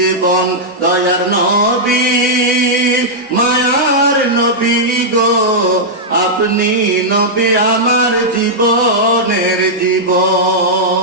দয়ার নবী মায়ার নবী গো, আপনি নবী আমার জীবনের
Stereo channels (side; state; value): both; normal; correlation -0.08